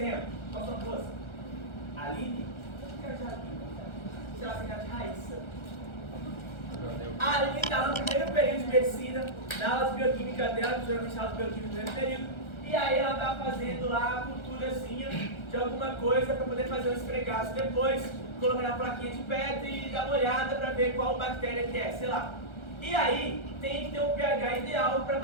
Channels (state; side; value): late; right; 1.3 ms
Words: qual são duas? Aline? Será que é de Raíssa? A Aline está no primeiro período de medicina, na aula de bioquímica dela, que geralmente aula de bioquímica no primeiro período, e aí ela está fazendo lá a culturazinha de alguma coisa para poder fazer um esfregaço depois, colocar na plaquinha de pedra e dar uma olhada para ver qual bactéria que é, sei lá. E aí tem que ter um pH ideal para a